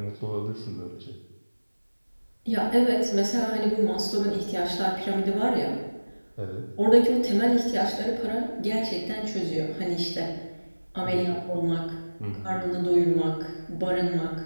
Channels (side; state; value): both; inverted; correlation -1.00